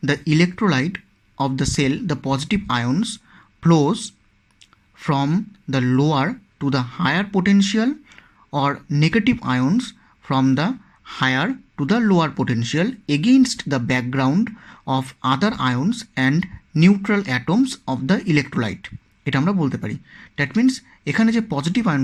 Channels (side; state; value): both; identical; correlation 1.00